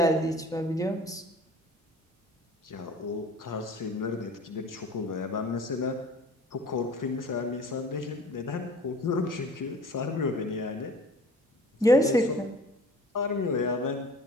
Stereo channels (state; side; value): normal; both; correlation 0.46